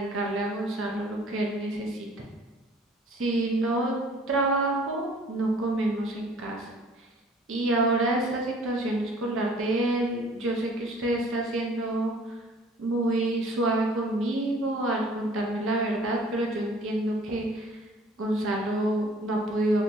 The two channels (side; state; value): both; normal; correlation 0.53